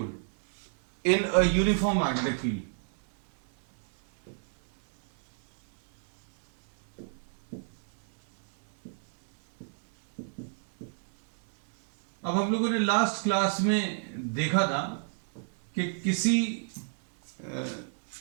in a uniform magnetic field. अब हम लोगों ने लास्ट क्लास में देखा था कि किसी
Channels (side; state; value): left; silent; 59 dB below the other